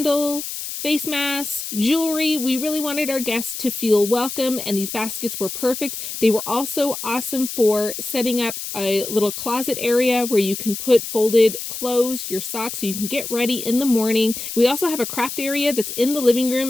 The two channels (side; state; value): left; noise; hiss, 7 dB below the sound